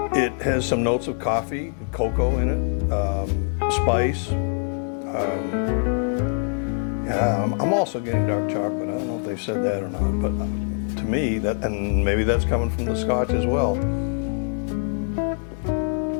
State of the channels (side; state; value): right; silent; 57 dB below the other